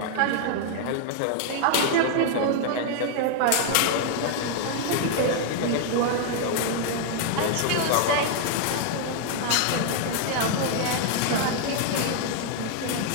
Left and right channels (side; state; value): both; different; correlation 0.00